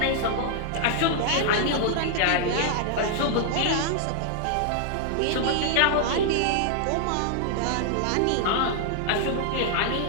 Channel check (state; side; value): different; both; correlation -0.01